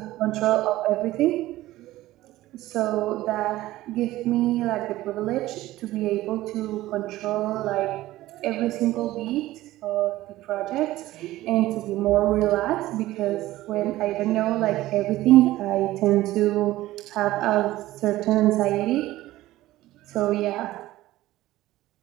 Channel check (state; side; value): quieter; left; 16.3 dB